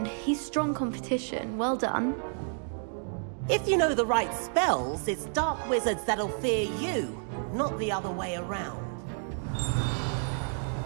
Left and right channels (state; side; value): silent; left; 58 dB below the other